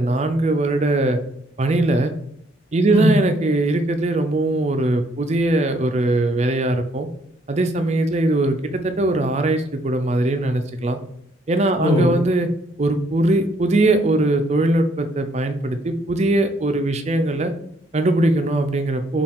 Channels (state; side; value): normal; both; correlation 0.68